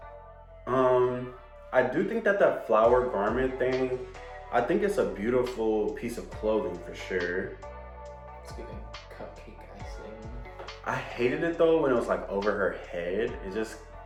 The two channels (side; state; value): both; identical; correlation 1.00